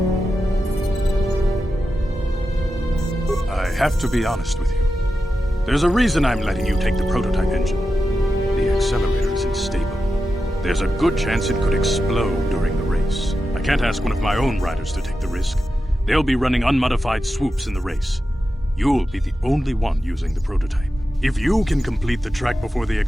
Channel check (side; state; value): both; normal; correlation 0.90